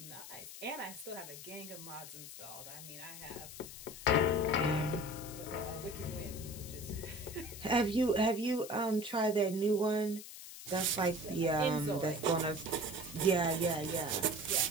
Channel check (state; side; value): noise; left; hiss, 12 dB below the sound